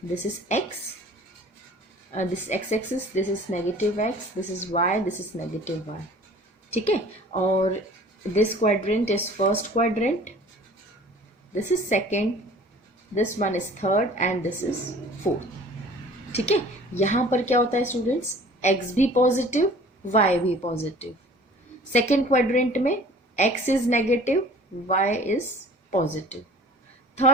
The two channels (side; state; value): both; normal; correlation 0.47